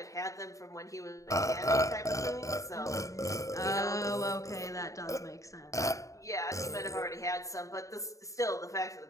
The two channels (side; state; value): right; late; 0.16 ms